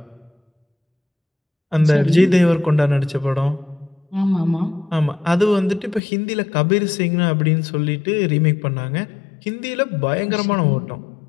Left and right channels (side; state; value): right; drops out; at 6.0 s